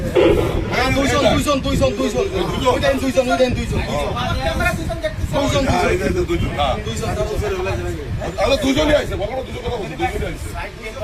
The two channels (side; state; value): both; identical; correlation 1.00